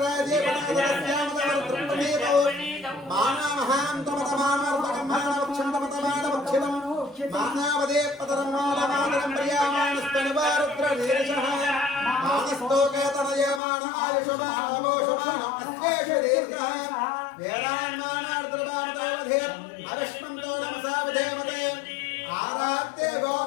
पदादस्यामतवर्तृप्तमेतो मानामहान्तमतमानवर्तकं मानवक्षन्तमतमानवक्षितं मानावदे पतरं मानमातरं प्रियामाणस्तनिवारुद्रनीरशः मानस्तोकेतनयमानायुषमानमोषमानम् अस्वेषु दीर्घः वेदान्मानार्द्रवामतावधे अविष्मन्तो नमसावधेमते आरात्ते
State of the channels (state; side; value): drops out; right; at 13.6 s